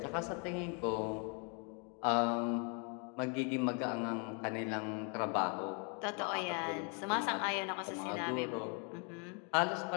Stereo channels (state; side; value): quieter; right; 36.6 dB